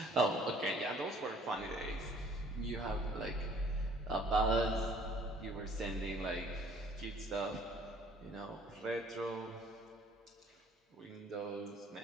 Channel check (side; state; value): both; normal; correlation 0.57